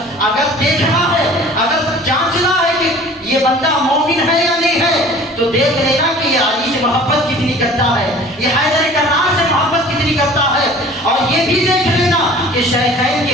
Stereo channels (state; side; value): normal; both; correlation 0.46